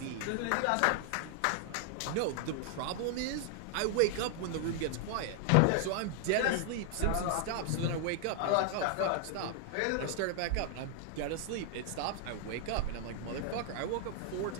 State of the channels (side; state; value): both; different; correlation 0.00